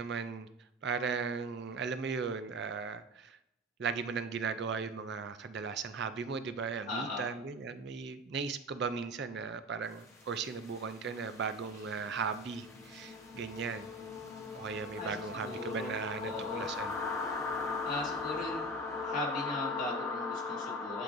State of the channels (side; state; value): both; normal; correlation 0.31